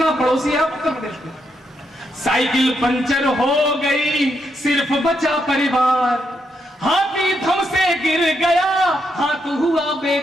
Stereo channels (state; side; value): normal; both; correlation 0.80